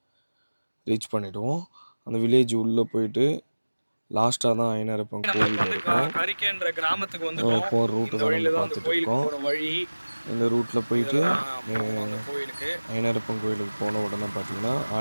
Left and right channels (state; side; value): inverted; both; correlation -1.00